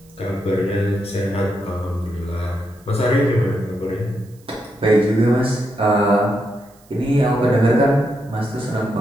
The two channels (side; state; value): right; noise; hiss, 30 dB below the sound